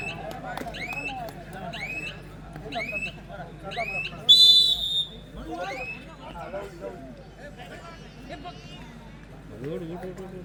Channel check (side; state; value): both; identical; correlation 1.00